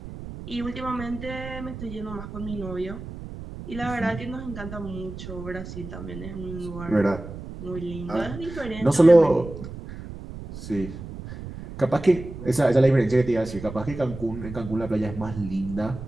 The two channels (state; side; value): noise; right; rumble, 11 dB below the sound